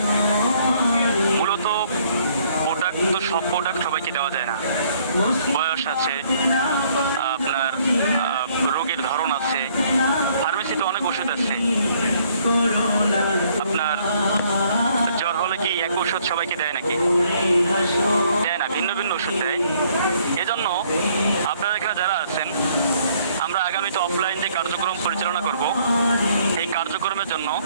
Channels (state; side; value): inverted; both; correlation -0.64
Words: মূলত প্রোডাক্ট তো সব প্রোডাক্ট সবাইকে দেওয়া যায় না, বয়স আছে, আপনার রোগের ধরন আছে, ফার্মেসিতে অনেক ওষুধ আছে। আপনার জ্বর হলে কি এক ওষুধ সবাইকে দেয় নাকি? দেয় না, ভিন্ন ভিন্ন ওষুধ দেয়। এজন্য আপনারা এখানে যারা আছেন, আমরা আগামীতে অফলাইন যে কার্যক্রম পরিচালনা করব, এই কার্যক্রমের জন্য